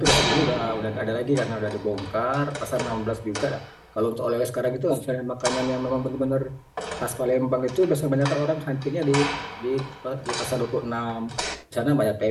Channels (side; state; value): both; identical; correlation 1.00